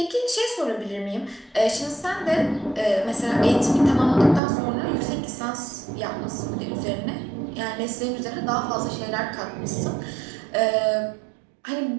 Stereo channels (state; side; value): drops out; left; at 4.4 s